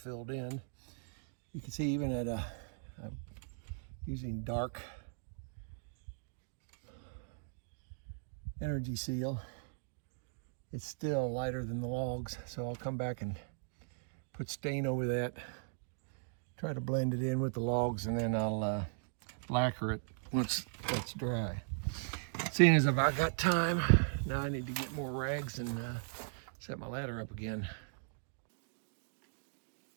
in. You can see even at I'm using dark energy seal, it's still lighter than the logs, so I'll come back and put stain over that, try to blend it in with the logs, and then I'll lacquer it once that's dry. Seeing as if I got time, now I need to get more rags and set my ladder up again.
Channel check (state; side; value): silent; left; digital silence